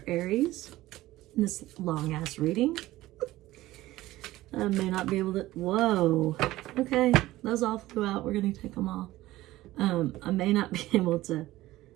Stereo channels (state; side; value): quieter; left; 16.7 dB